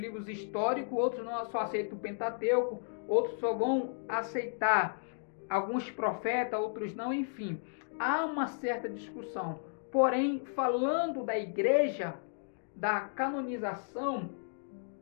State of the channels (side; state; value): right; silent; digital silence